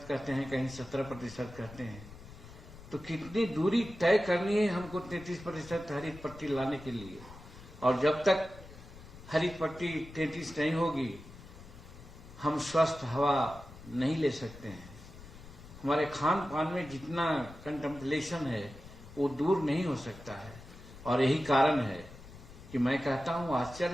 कहते हैं, कहीं 17% कहते हैं। तो कितनी दूरी तय करनी है हमको 33% हरित पट्टी लाने के लिए। और जब तक हरित पट्टी 33 नहीं होगी, हम स्वस्थ हवा नहीं ले सकते हैं। हमारे खान पान में जितना कंटेम्पलेशन है वो दूर नहीं हो सकता है। और यही कारण है कि मैं कहता हूं,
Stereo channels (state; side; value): noise; left; rumble, 17 dB below the sound